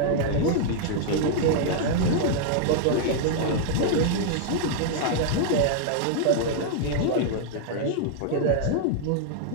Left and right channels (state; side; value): different; both; correlation 0.00